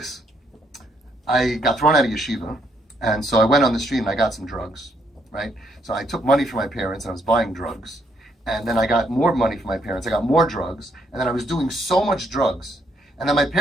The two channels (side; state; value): both; normal; correlation 0.73